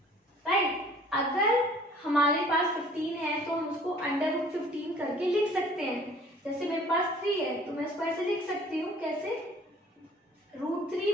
राइट। अगर हमारे पास 15 है तो हम उसको √15 करके लिख सकते हैं। जैसे मेरे पास 3 है तो मैं इसको ऐसे लिख सकती हूँ, कैसे,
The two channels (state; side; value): normal; both; correlation 0.53